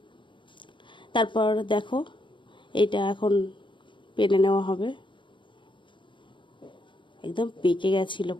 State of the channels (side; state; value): right; late; 0.24 ms